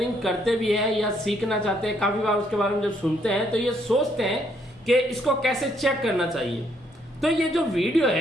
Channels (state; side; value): normal; both; correlation 0.70